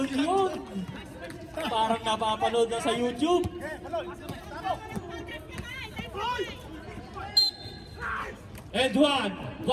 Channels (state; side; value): identical; both; correlation 1.00